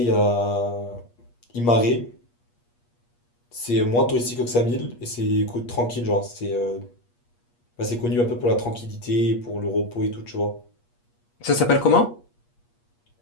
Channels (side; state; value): right; late; 8.4 ms